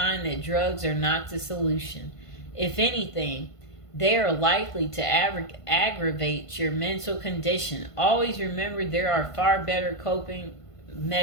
that drugs are not the solution. If anything, they are likely to aggravate your mental condition. Always remember there are far better coping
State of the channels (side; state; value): right; late; 1.5 ms